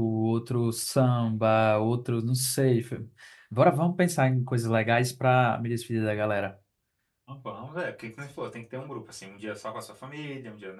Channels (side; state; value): both; identical; correlation 1.00